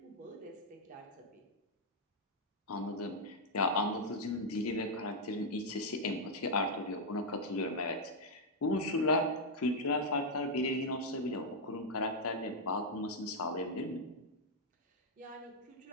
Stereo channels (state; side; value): normal; both; correlation -0.03